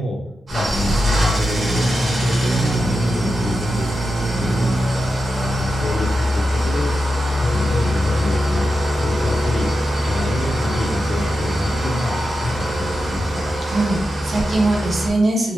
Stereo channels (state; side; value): normal; both; correlation 0.90